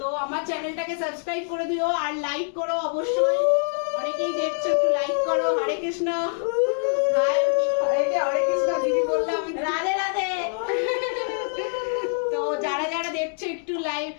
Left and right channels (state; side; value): silent; right; digital silence